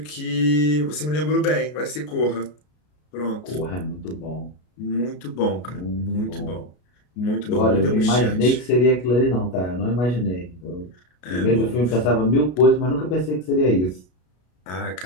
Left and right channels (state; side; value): late; right; 33 ms